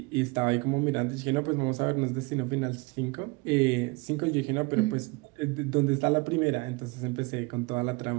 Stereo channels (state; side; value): quieter; left; 27.0 dB